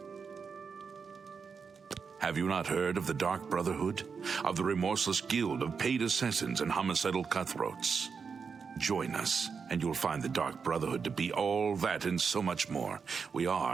Have you not heard of the Dark Brotherhood? Of the remorseless guild of paid assassins and homicidal cutthroats? Join us, and you'll find the Dark Brotherhood to be all that and so much more. We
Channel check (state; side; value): quieter; left; 5.7 dB